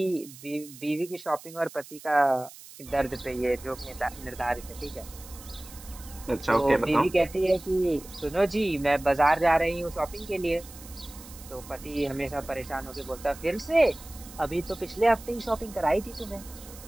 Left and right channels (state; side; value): noise; right; hiss, 18 dB below the sound